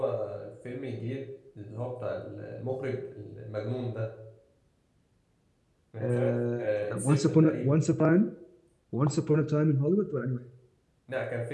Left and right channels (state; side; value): identical; both; correlation 1.00